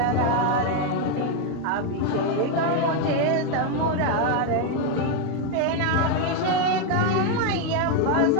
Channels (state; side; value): different; both; correlation 0.02